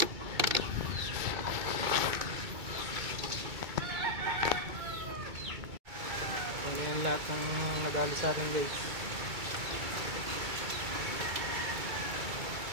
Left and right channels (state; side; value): late; left; 2.3 ms